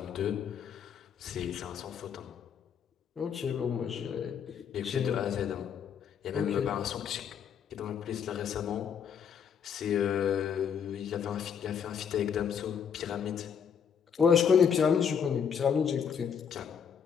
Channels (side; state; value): right; quieter; 7.5 dB